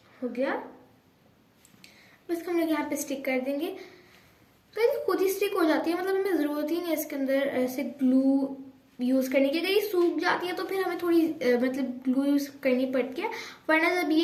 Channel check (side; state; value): both; identical; correlation 1.00